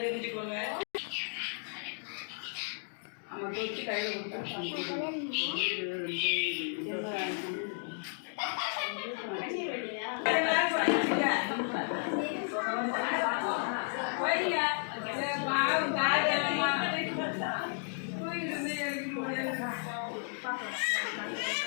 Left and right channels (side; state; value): right; silent; 56 dB below the other